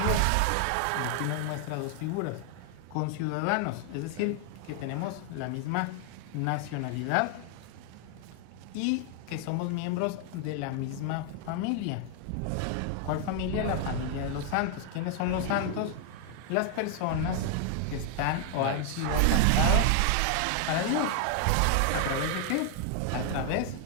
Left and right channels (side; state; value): both; different; correlation 0.00